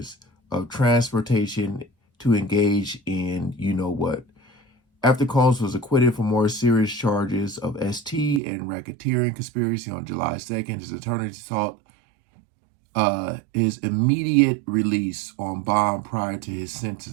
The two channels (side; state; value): left; drops out; at 8.4 s